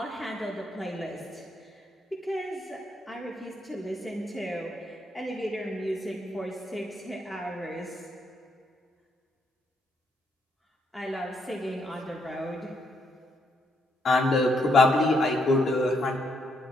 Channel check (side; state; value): both; normal; correlation 0.75